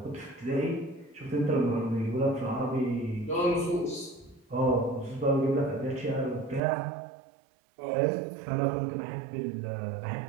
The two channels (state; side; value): drops out; left; at 6.6 s